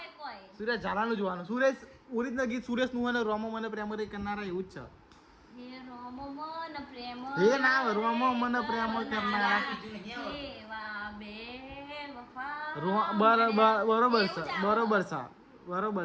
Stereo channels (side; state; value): both; identical; correlation 1.00